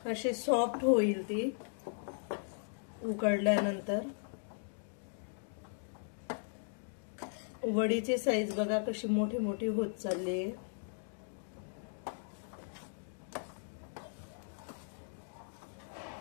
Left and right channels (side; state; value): right; silent; digital silence